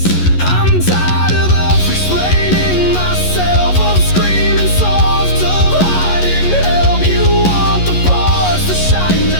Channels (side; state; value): right; late; 11 ms